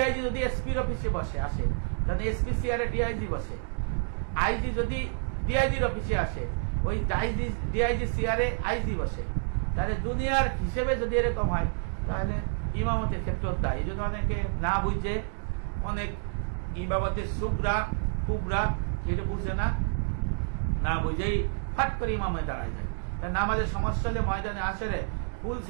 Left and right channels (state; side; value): silent; left; 59 dB below the other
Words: যদি এসপির অফিসে বসে আসে, তাহলে এসপি চেয়ারে ডিআইজি বসে। আইজি যদি ডিআইজির অফিসে আসে, ওই ডিআইজি চেয়ারে আইজি বসে। তাহলে দুনিয়ার হিসেবে যদি এরকম হয়, তাহলে ইমামতের ক্ষেত্রে দায়। এই জন্য অনেকে না বুঝে, অনেক ইমামতের সুগরা কুবরা এটা বুঝে না, না বুঝেই ফাট করে ইমামে দাঁড়ায় যায়। নামাজের সমস্যা হলে ময়দানে আসরে ফুল